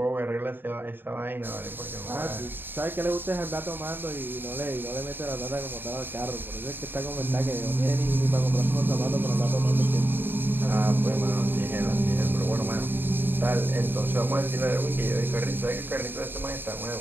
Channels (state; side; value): late; left; 0.096 ms